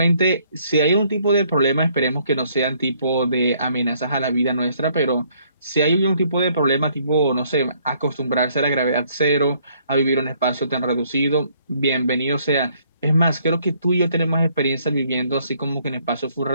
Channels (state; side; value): inverted; both; correlation -0.65